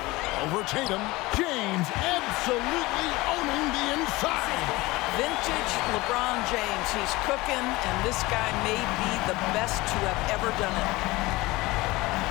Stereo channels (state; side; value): quieter; right; 20.9 dB